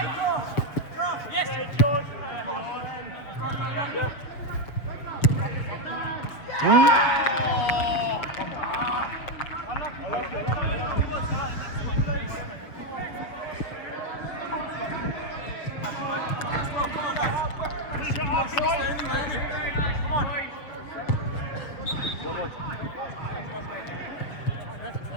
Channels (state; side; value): late; right; 6.8 ms